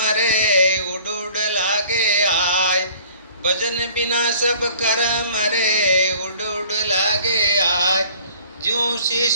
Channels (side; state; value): both; inverted; correlation -0.50